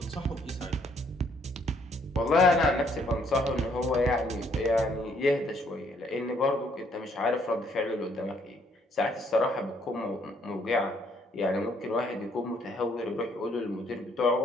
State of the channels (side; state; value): both; normal; correlation 0.67